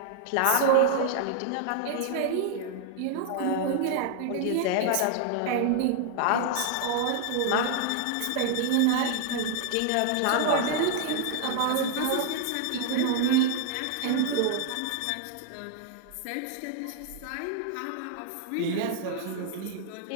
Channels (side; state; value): both; different; correlation 0.00